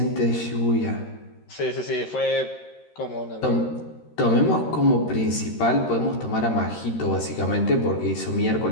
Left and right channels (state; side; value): late; right; 13 ms